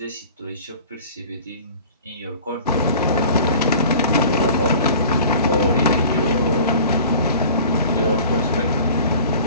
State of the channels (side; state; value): both; inverted; correlation -0.44